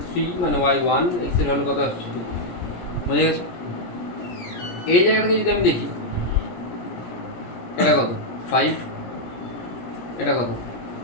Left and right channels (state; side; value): late; right; 17 ms